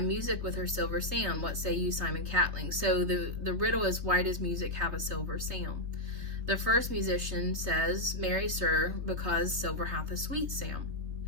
with her silver sound? What say you, Simon Catling? So the riddle is, why does music have a silver sound? The first musician says, marry sir, because silver hath a sweet sound.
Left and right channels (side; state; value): left; late; 3.4 ms